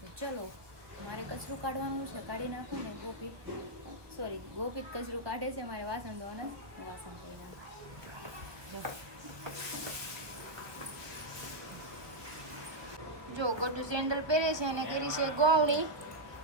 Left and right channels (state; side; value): late; left; 1.2 ms